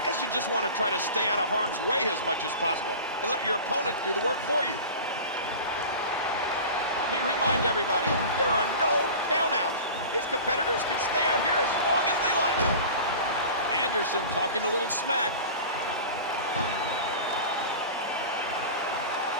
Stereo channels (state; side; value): inverted; both; correlation -0.35